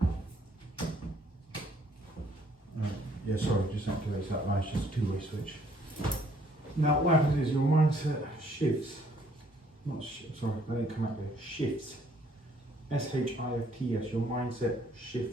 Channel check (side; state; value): both; normal; correlation 0.64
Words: Yeah, sorry, just activates that light. It's just a 2-way switch. Now, what happens is your mindset shifts. Sorry, that didn't come out there. Shifts. S-H-I-F-T-S. Your mindset